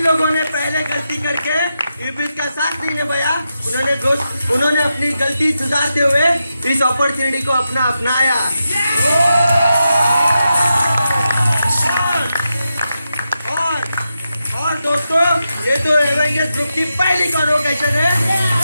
लोगों ने पहले गलती करके इब्लिस का साथ नहीं निभाया, उन्होंने अपनी गलती सुधारते हुए इस अपॉर्चुनिटी को अपनाया। और दोस्तों, ये तो एवेंजर्स ग्रुप की पहली कन्वोकेशन है।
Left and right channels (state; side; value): inverted; both; correlation -0.87